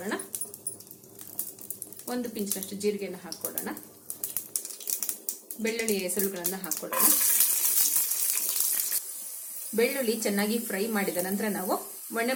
1 ಪಿಂಚಿನಷ್ಟು ಜೀರಿಗೆಯನ್ನು ಹಾಕೊಳ್ಳೋಣ. ಬೆಳ್ಳುಳ್ಳಿ ಹೆಸರುಗಳನ್ನು ಹಾಕೊಳ್ಳೋಣ. ಬೆಳ್ಳುಳ್ಳಿ ಚೆನ್ನಾಗಿ ಫ್ರೈ ಮಾಡಿದ ನಂತರ ನಾವು ಒಣ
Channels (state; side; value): identical; both; correlation 1.00